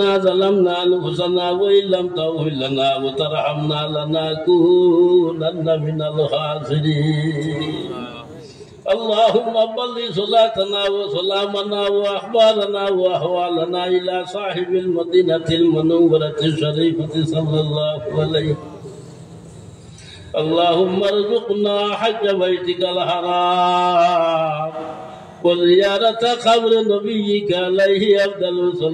ظلمنا أنفسنا وإن لم تغفر لنا وترحمنا لنكونن من الخاسرين. اللهم بلغ صلاتنا وسلامنا وأخبارنا وأحوالنا إلى صاحب المدينة المنورة الشريفة صلى الله عليه. اللهم ارزقنا حج بيتك الحرام وزيارة قبر نبيك عليه أفضل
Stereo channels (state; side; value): identical; both; correlation 1.00